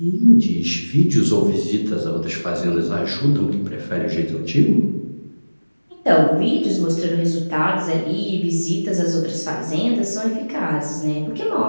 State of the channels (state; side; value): inverted; both; correlation -1.00